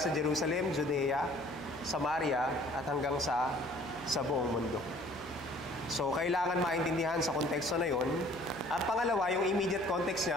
Jerusalem, Judea, Samaria at hanggang sa buong mundo. So kailangan maintindihan sa konteksto na 'yon. At pangalawa, yung immediate context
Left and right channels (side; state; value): left; noise; hum, 24 dB below the sound